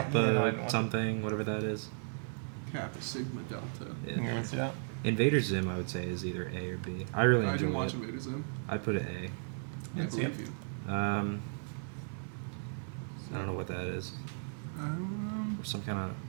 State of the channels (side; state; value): left; silent; 54 dB below the other